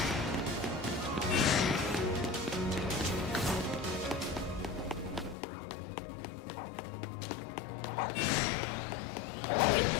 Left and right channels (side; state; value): right; drops out; at 5.4 s